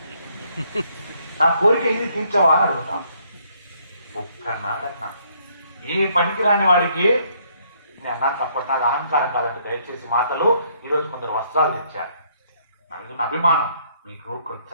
నా కోరిక ఇది తీర్చవా అని అడుగుతాం. ఒక్కనాడన్నా ఏ పనికి రాని వాడికి నేను అన్నా తప్పటి నాది అహంకారం కాదండి. దయచేసి మాటలు. ఈరోజు కొందరు వస్త్రాలు తెచ్చారు, నా మీద ఉన్న అభిమానం. మీకు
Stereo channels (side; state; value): both; inverted; correlation -0.68